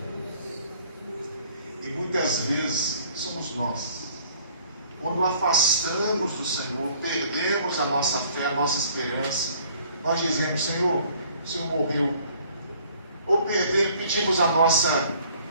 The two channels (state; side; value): inverted; both; correlation -0.57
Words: E muitas vezes somos nós, quando afastamos do Senhor, perdemos a nossa fé, a nossa esperança, nós dizemos: Senhor, o Senhor morreu. Ou pedimos a nossa